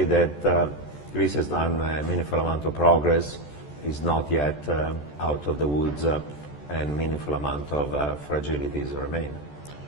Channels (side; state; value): right; late; 14 ms